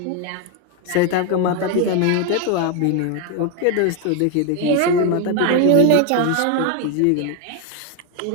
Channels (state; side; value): different; both; correlation 0.01